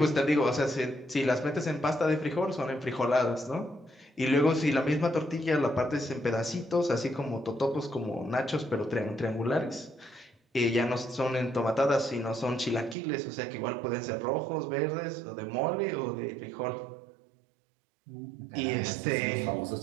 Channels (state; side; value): drops out; left; at 13.0 s